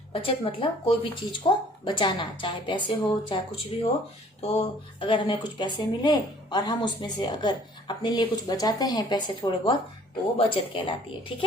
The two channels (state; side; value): normal; both; correlation 0.56